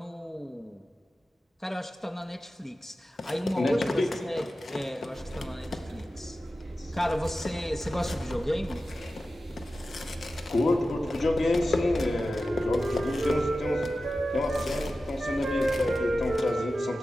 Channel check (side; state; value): both; normal; correlation 0.93